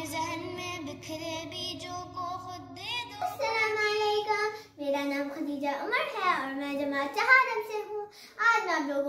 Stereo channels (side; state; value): both; identical; correlation 1.00